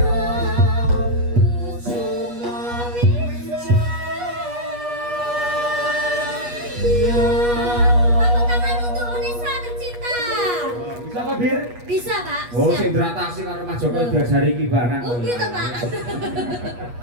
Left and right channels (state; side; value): late; left; 8.3 ms